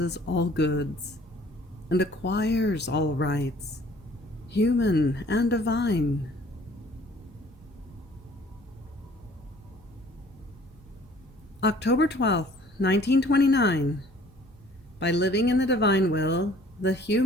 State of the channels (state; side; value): normal; both; correlation 0.54